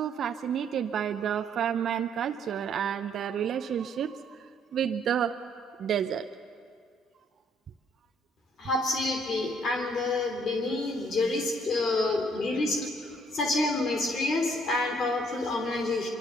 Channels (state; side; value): normal; both; correlation 0.65